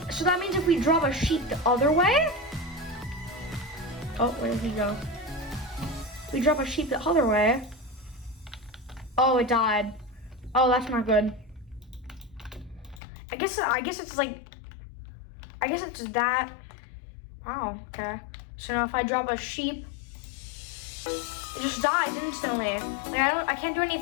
so that means if we drop a sheep the other way, oh, where did he go? We drop a sheep the other way. Oh, it died. Oh, that's not good. I guess it's that. Wow, okay. So now if I drop a sheep, it just dies instantly. Like I can't do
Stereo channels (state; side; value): drops out; right; at 13.0 s